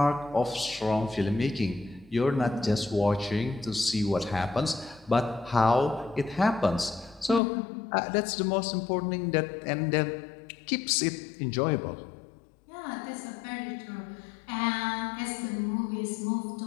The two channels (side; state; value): right; drops out; at 7.4 s